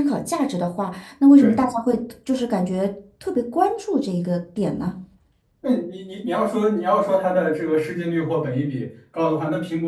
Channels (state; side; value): identical; both; correlation 1.00